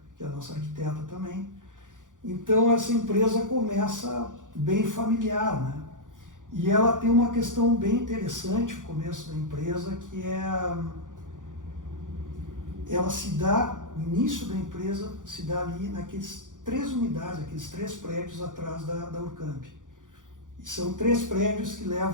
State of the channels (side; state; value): left; late; 0.88 ms